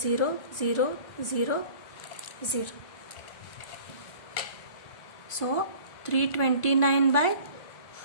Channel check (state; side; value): late; right; 1.5 ms